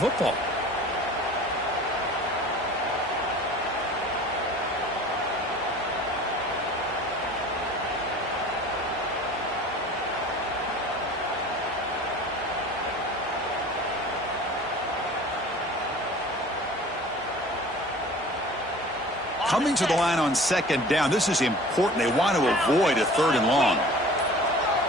Coming to the line on second down. This is important. They want to avoid a 3rd and long.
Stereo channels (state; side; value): normal; both; correlation 0.44